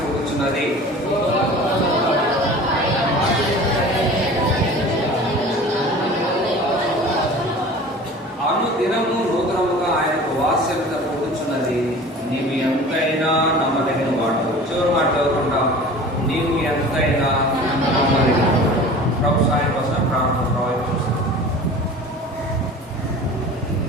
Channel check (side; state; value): both; normal; correlation 0.41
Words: అనుదినము నూతనముగా ఆయనకు వాత్సల్యత పుడుతున్నది. నీవు ఎంతైనా నమ్మదగిన వాడు. చివరి మాట చదువుకుంటాం. నీవు ఎంతైనా నమ్మదగిన. ప్రభు సాయం కోసం ప్రార్థన ప్రవహించాం.